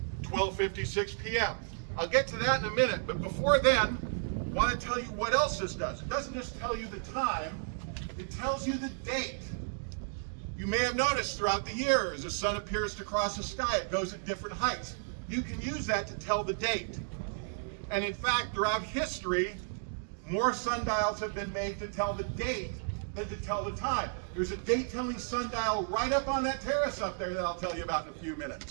12:56 p.m.? I'll get to that in a minute, but before then, I want to tell you what else this does. It doesn't just tell you the time, it tells you the date. You may have noticed throughout the year, as the sun appears to cross the sky, it goes at different heights. You can use that to tell the date. And in fact, throughout history, more sundials have been made to tell the date than to tell the time. There's a date-telling sundial right up on that terrace up there that I'll tell you about in a few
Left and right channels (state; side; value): silent; left; digital silence